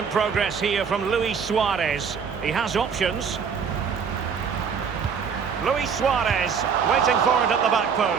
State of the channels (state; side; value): quieter; left; 6.4 dB